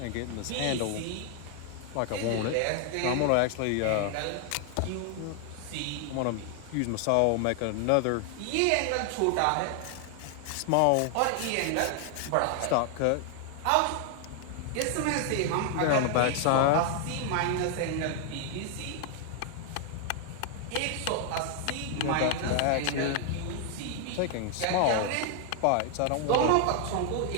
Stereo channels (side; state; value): both; different; correlation 0.00